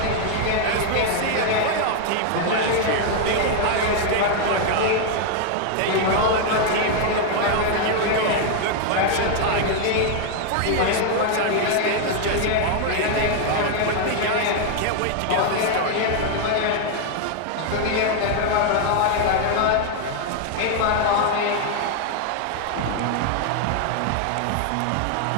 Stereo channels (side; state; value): both; different; correlation 0.00